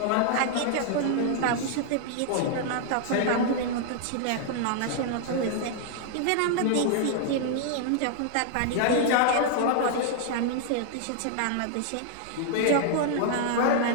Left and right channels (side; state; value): both; different; correlation 0.00